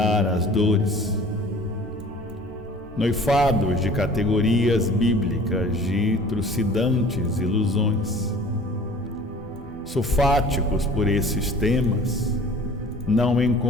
as dores, noifados de categorias bíblicas de trucidantes ilusões, sofáticos por esses temas, não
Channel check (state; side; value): normal; both; correlation 0.47